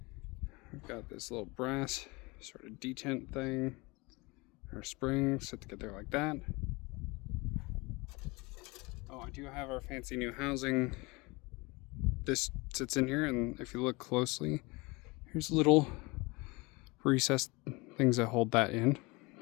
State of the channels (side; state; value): right; quieter; 25.3 dB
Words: We've got this little brass sort of detent thing. Our springs sit together like that. Oh, I do have our fancy new housing. This sits in here, and if you look closely, here's little recessed things that hold that in,